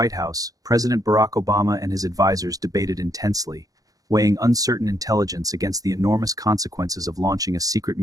House, President Barack Obama and his advisors debated intensely, weighing uncertain intelligence against the enormous consequences of launching a secret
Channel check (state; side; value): late; left; 0.17 ms